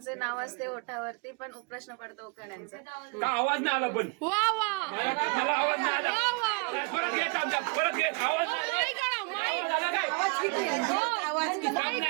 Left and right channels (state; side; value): quieter; left; 32.6 dB